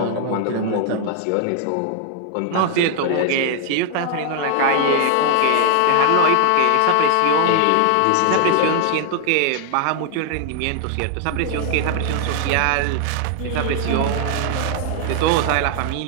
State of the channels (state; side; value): different; both; correlation 0.00